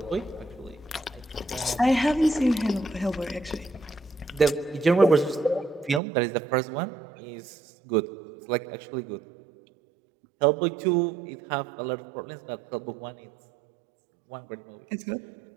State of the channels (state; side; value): drops out; left; at 6.0 s